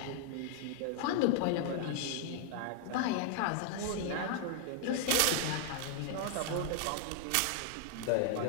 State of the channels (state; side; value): different; both; correlation 0.00